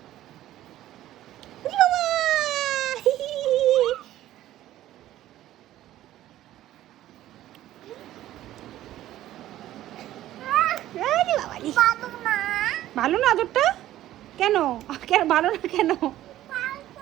ভালো না আদরটা? কেন কেন ভালো না? কেন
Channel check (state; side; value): quieter; left; 13.8 dB